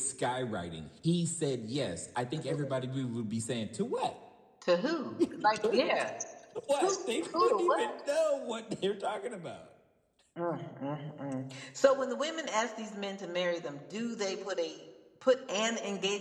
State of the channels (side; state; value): both; identical; correlation 1.00